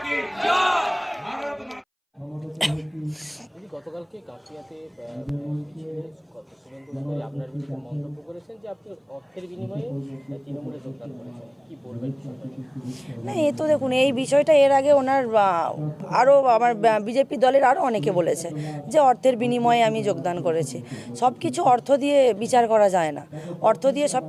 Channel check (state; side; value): identical; both; correlation 1.00